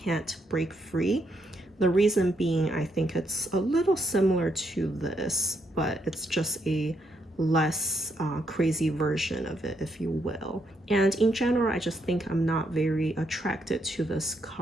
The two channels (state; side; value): normal; both; correlation 0.77